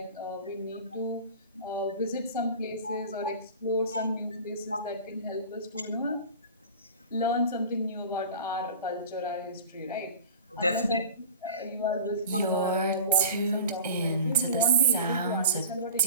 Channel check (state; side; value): inverted; both; correlation -0.38